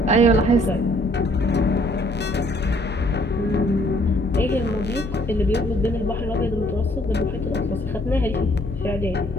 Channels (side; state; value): both; normal; correlation 0.63